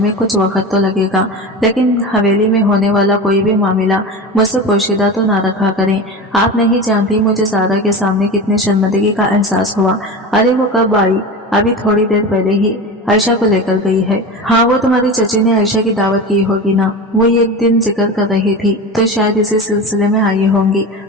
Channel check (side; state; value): both; normal; correlation 0.28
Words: कुछ वक्त तो लगेगा, लेकिन हवेली में होने वाला कोई भी मामला मुझसे पोशीदा तो ना रखा करें। आप नहीं जानती मुझे सारा के सामने कितनी शर्मिंदगी का एहसास हुआ। अरे वो कब आई? अभी थोड़ी देर पहले ही आयशा को लेकर गई है। हाँ, वो तुम्हारी चची ने आयशा की दावत की होगी ना, वो एक दिन जिक्र कर रही थी, तो शायद इसी सिलसिले में आई होंगी।